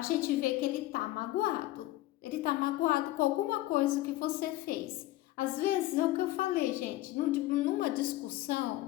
gente vê que ele está magoado com alguma coisa que você fez. Às vezes é o que eu falei, gente, numa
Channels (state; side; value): quieter; right; 16.8 dB